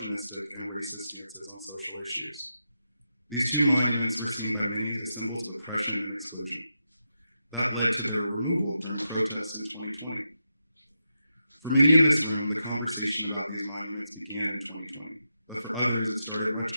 and racist stances on social issues. These 2 monuments were seen by many as symbols of oppression and exclusion. That led to their removal during protests in 2020. For many in this room, the conversation about these monuments began in 2020, but for others it started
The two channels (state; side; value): inverted; both; correlation -0.86